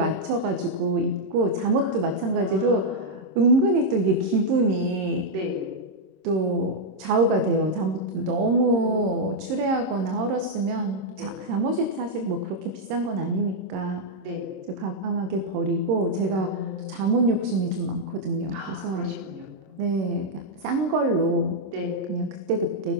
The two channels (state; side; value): late; left; 26 ms